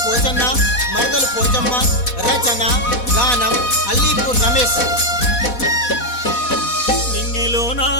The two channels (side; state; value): right; late; 4.1 ms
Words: పోచన్న, మరదలు పోచమ్మ. రచన గానం అల్లీపూర్ రమేష్. నింగిలో నా